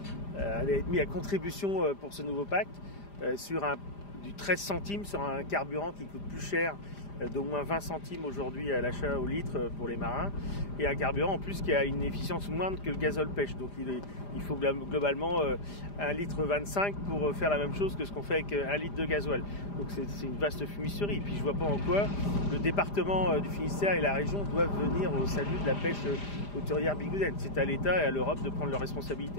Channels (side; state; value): right; late; 5.0 ms